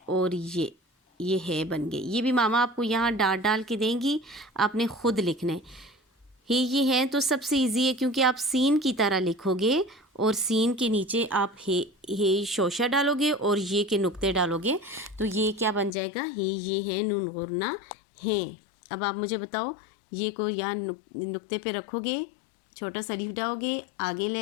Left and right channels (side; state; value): right; drops out; at 15.9 s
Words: और ये है बन गए। ये भी मामा आपको यहाँ डाट डाल के देंगी, आपने ख़ुद लिखना है। ये है तो सबसे इजी है क्योंकि आप सीन की तरह लिखोगे और सीन के नीचे आप हे शोशा डालोगे और ये के नुक्ते डालोगे, तो ये क्या बन जाएगा, ये है नून और ना हैं। अब आप मुझे बताओ, ये को यहाँ नुक्ते पे रखोगे, छोटा सा लीफ डालोगे, आगे